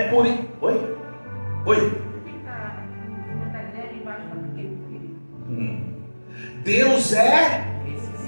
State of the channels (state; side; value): inverted; both; correlation -1.00